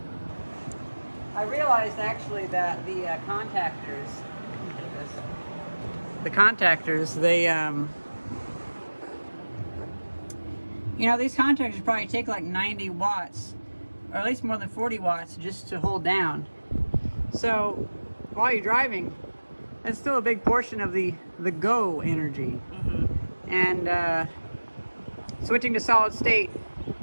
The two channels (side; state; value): both; inverted; correlation -1.00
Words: I realized actually that the contactors, they, you know, these contactors probably take like 90 watts, or at least more than 40 watts just to hold down. So while you're driving, that's still a big portion of the go energy. Mm-hmm. And switching to solid state